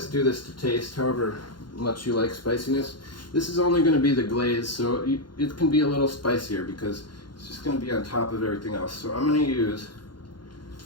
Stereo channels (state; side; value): late; right; 0.71 ms